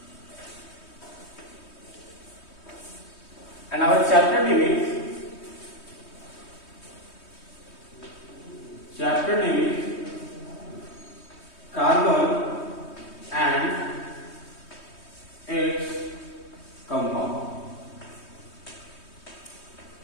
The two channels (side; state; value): right; late; 3.2 ms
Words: and our chapter name is carbon and its compound.